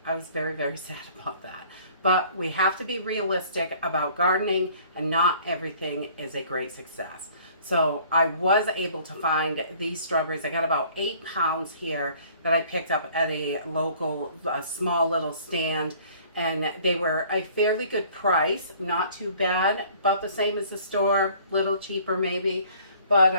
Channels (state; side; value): inverted; both; correlation -0.54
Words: I was very, very sad about that. But we have to be realistic about gardening, and not everything is a great success. So I was able to find these strawberries. I got about 8 pounds here that I picked up at a local, small little stand. And they were a fairly good price, not too bad, about the same as the store, little cheaper maybe. But